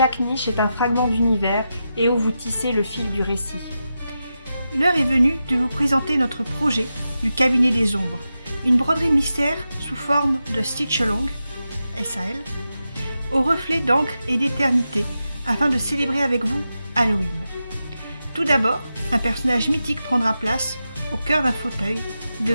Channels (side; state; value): both; inverted; correlation -0.89